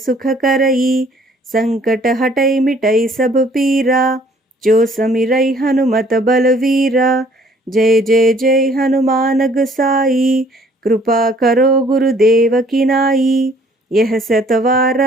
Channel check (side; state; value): both; normal; correlation 0.59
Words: करई संकट हटै मिटै सब पीरा जो समिरै हनुमत बलवीरा जय जय जय हनुमान गोसाई, कृपा करो गुरुदेव की नाई। यह